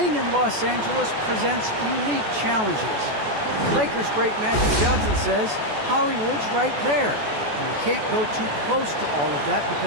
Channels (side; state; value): left; late; 14 ms